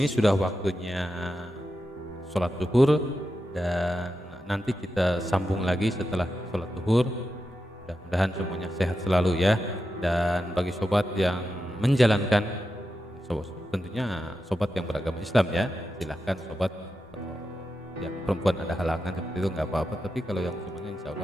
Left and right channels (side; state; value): both; normal; correlation 0.89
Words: sudah waktunya sholat zuhur dan nanti kita sambung lagi setelah sholat zuhur. Mudah-mudahan semuanya sehat selalu ya. Dan bagi sobat yang menjalankan, tentunya sobat yang beragama Islam ya, silahkan sobat. Kalau yang perempuan ada halangan seperti itu nggak apa-apa, tapi kalau yang semuanya insya